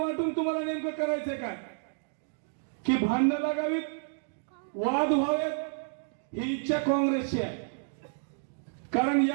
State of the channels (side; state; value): left; silent; digital silence